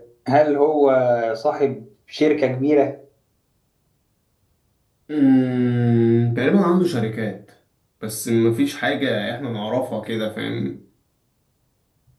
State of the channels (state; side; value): identical; both; correlation 1.00